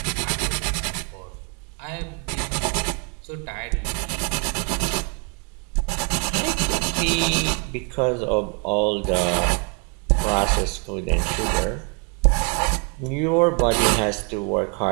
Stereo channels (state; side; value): quieter; left; 34.6 dB